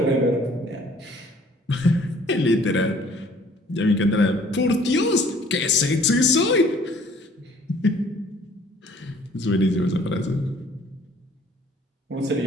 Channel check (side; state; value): both; normal; correlation 0.56